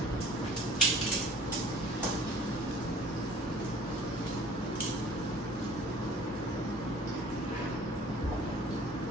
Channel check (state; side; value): normal; both; correlation 0.48